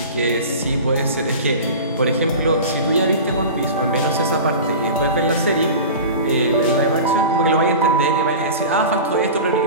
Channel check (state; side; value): inverted; both; correlation -0.33